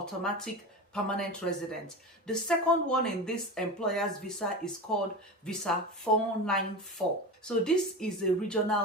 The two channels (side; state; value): both; normal; correlation 0.26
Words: permanent residence. The second one in this employer's visa is called visa 494. So this is a